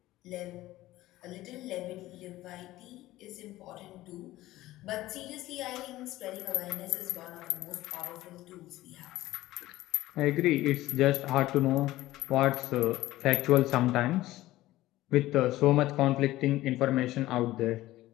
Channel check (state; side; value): quieter; right; 16.4 dB